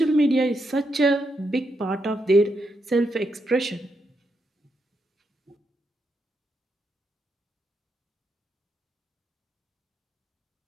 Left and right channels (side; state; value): both; normal; correlation 0.81